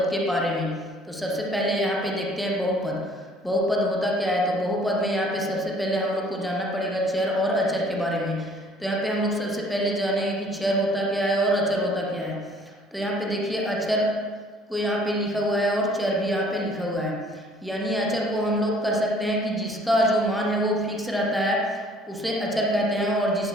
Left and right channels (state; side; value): normal; both; correlation 0.57